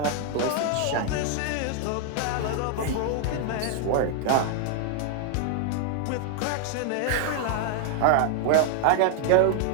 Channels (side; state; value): both; different; correlation 0.00